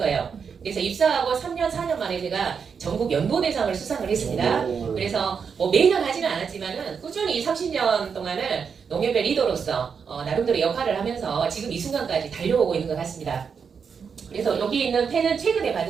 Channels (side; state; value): left; quieter; 6.3 dB